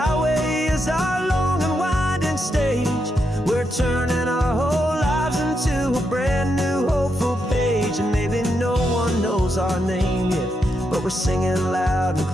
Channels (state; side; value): normal; both; correlation 0.82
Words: is our long and winding stage. We're turning our whole lives into a brand new hopeful page. And maybe no one knows our name yet, but we're singing loud and